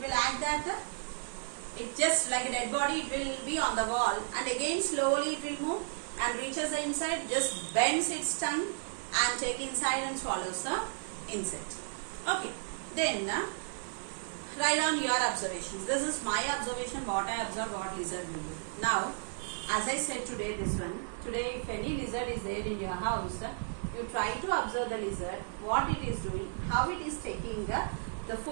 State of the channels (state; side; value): silent; left; 55 dB below the other